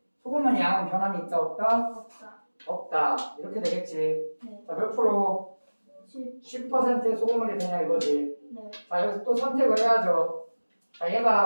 양은 변함이 있다 없다? 없다. 없다. 이렇게 되겠지. 네. 자, 몇 프로? 10. 10%의 소금물이 되냐 이거지. 네. 자, 여기서 또 선택을 해야죠. 자,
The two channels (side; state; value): both; inverted; correlation -1.00